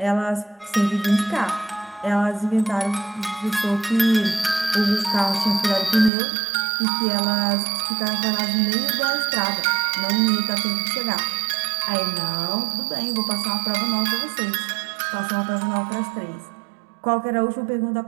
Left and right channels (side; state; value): left; drops out; at 6.1 s